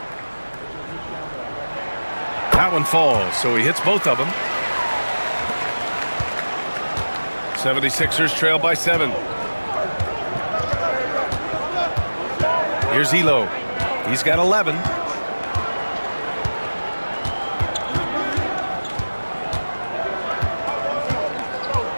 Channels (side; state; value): both; inverted; correlation -1.00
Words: That one falls, so he hits both of them. 76ers trail by 7. Here's Elo. He's got 11.